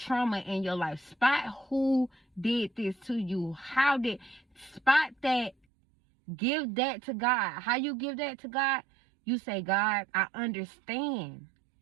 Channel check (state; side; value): drops out; left; at 5.6 s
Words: in your life. Spot who did this to you. Spot that. Give that to God. How you give that to God? You say, God, I understand